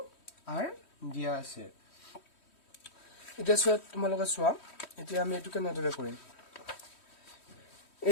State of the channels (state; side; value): late; right; 3.1 ms